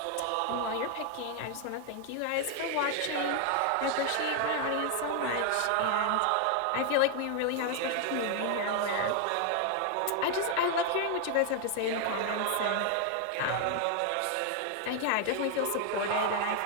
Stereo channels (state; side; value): different; both; correlation 0.00